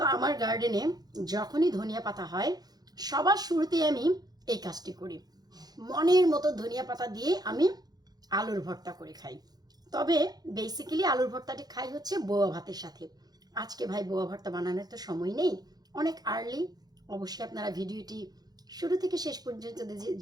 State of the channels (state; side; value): late; left; 0.19 ms